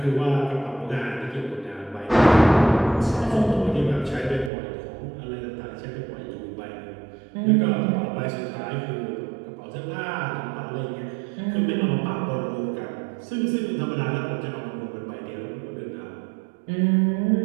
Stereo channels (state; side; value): drops out; left; at 4.5 s